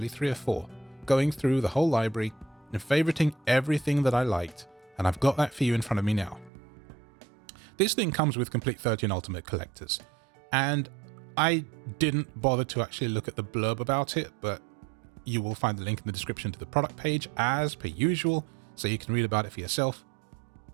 3 or 4, going through the whole library and favoriting everything that I liked, and I've got that for you in front of me now. This thing comes with complete 13 Ultimate collectors, and I didn't bother to actually look at the blurb about it, but you will find the link in the description to the product page as per usual, so you can read about it for yourself.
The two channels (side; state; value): left; drops out; at 6.5 s